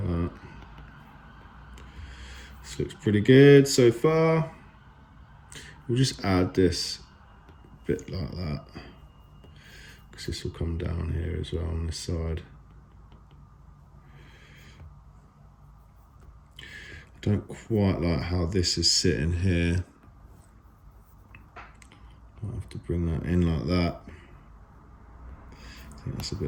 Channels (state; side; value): identical; both; correlation 1.00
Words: that. This looks pretty good so far. We'll just add this bit like that, because this will come down here as well on this side. I don't quite like how this is sitting here. I'll have to bring that in like that. I think that's a